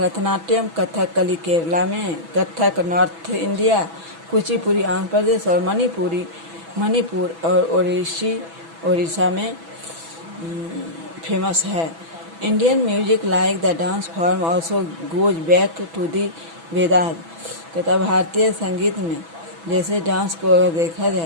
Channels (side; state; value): left; late; 6.1 ms